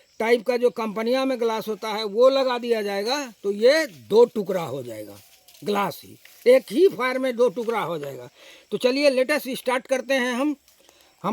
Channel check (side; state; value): both; identical; correlation 1.00